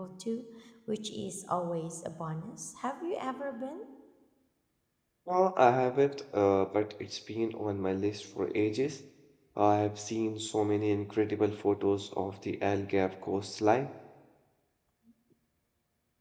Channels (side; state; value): both; identical; correlation 1.00